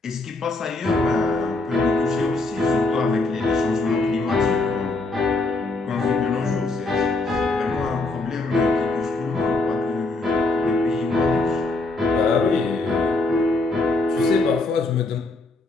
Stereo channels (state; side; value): quieter; right; 3.2 dB